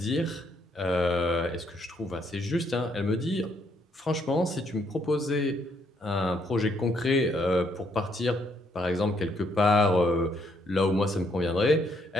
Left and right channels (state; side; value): normal; both; correlation 0.71